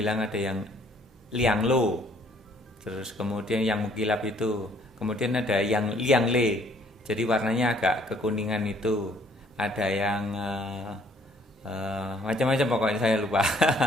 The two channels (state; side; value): normal; both; correlation 0.61